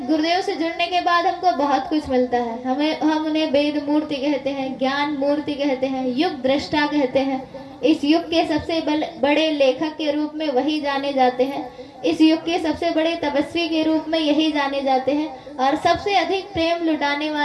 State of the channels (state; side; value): identical; both; correlation 1.00